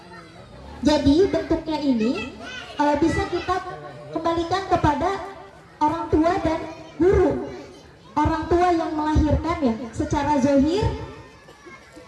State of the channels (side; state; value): both; identical; correlation 1.00